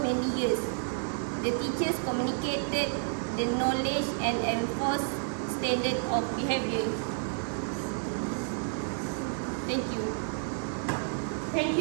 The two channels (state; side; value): silent; left; digital silence